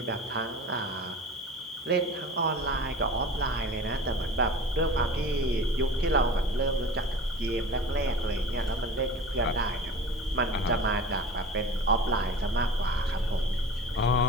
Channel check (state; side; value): normal; both; correlation 0.37